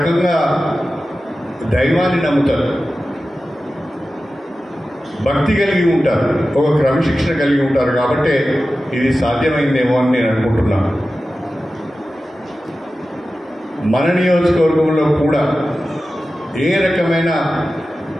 దైవాన్ని నమ్ముతారు, భక్తి కలిగి ఉంటారు, ఒక క్రమశిక్షణ కలిగి ఉంటారు. కాబట్టి ఇది సాధ్యమైందేమో అని నేను అనుకుంటున్నాను. మన నియోజకవర్గంలో కూడా ఏ రకమైన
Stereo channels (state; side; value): normal; both; correlation 0.94